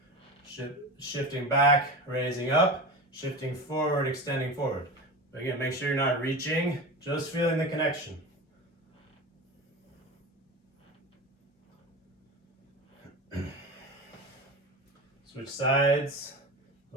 shifting back, raising up, shifting forward, extending forward. But again, make sure you're not reaching, just feeling the connection. Switch sides,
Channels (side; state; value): both; normal; correlation 0.27